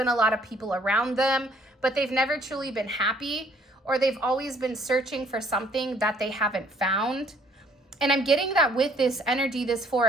a lot of people around them, but they've never truly been happy, or they've always been searching for something that they haven't found. And I'm getting that with this energy, this Four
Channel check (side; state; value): both; normal; correlation 0.61